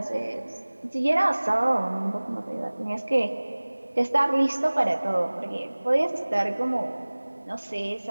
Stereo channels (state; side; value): inverted; both; correlation -1.00